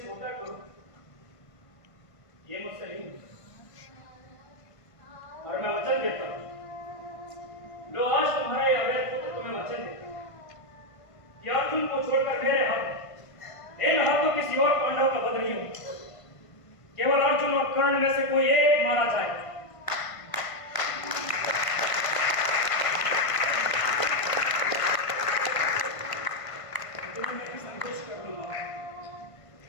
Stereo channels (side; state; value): right; late; 1.5 ms